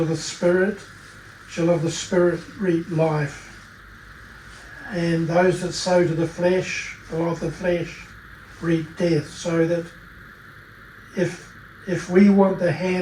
the Spirit shall of the Spirit reap life. And those that sow to the flesh shall of the flesh reap death. So that if we want the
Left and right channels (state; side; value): identical; both; correlation 1.00